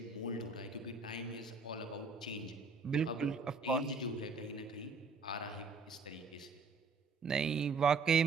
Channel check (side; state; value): left; quieter; 4.4 dB